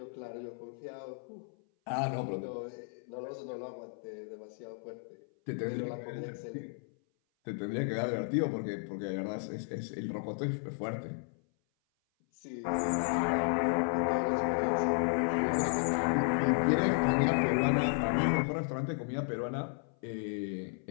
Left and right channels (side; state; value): right; silent; 55 dB below the other